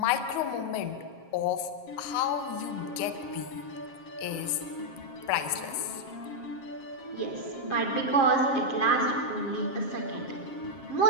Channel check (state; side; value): late; right; 7.4 ms